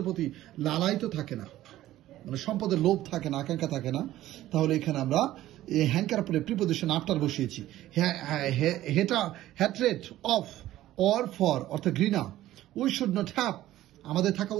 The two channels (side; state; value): left; quieter; 14.5 dB